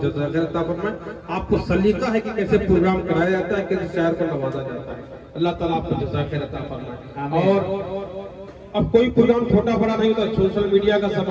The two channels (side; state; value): both; identical; correlation 1.00